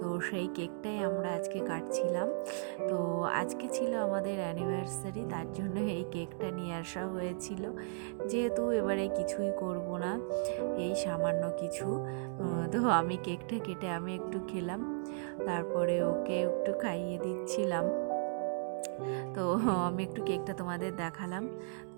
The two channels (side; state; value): left; silent; digital silence